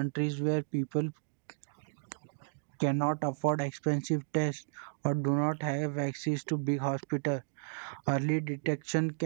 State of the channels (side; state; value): left; silent; digital silence